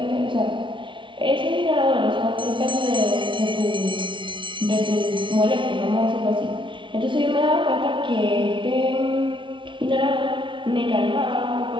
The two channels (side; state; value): left; late; 0.24 ms